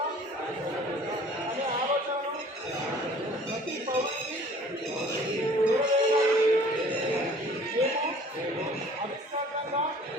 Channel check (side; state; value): both; normal; correlation 0.51